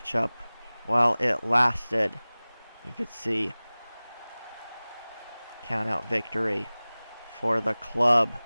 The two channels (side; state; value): both; inverted; correlation -0.99